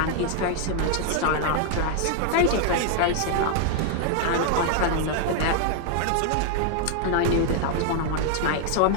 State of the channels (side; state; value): both; different; correlation 0.00